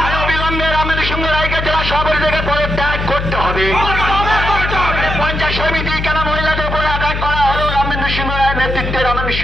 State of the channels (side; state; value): left; noise; hum, 3 dB below the sound